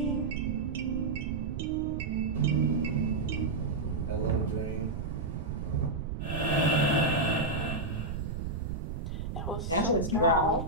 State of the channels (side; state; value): right; noise; rumble, 4 dB below the sound